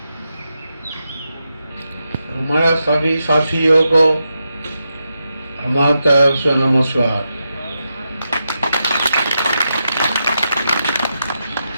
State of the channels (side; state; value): both; inverted; correlation -0.86